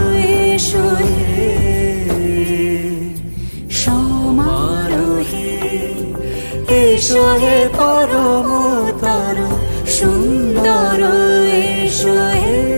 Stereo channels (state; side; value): inverted; both; correlation -1.00